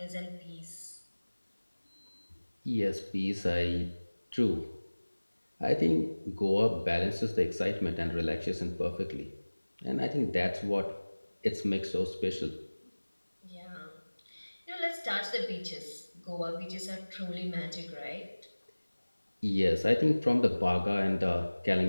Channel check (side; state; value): both; inverted; correlation -1.00